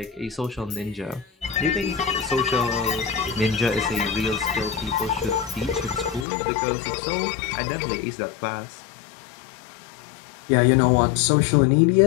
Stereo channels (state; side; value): drops out; right; at 6.2 s